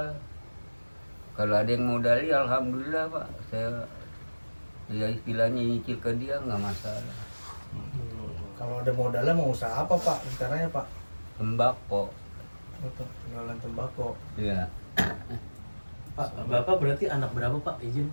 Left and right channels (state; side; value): inverted; both; correlation -1.00